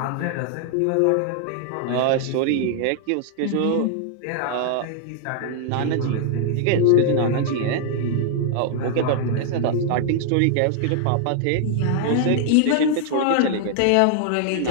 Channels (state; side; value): different; both; correlation 0.00